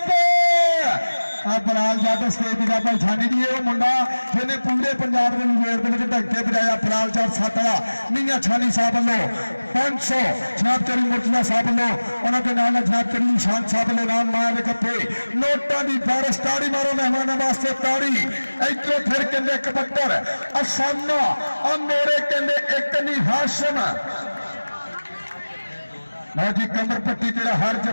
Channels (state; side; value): inverted; both; correlation -1.00